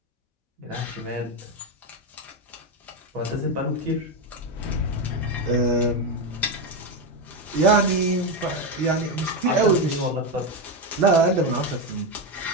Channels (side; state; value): both; normal; correlation 0.11